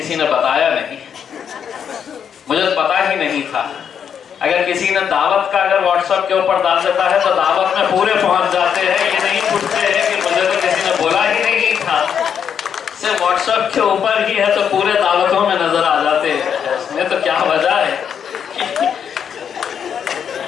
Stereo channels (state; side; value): quieter; right; 7.9 dB